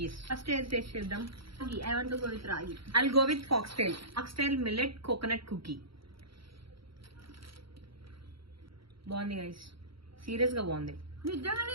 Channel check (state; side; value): late; left; 0.75 ms